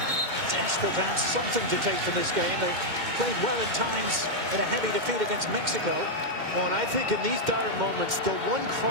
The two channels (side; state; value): left; late; 2.1 ms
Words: desperate to have something to take from this game. They played well at times in a heavy defeat against Mexico. Well, and I think in these dire moments, the one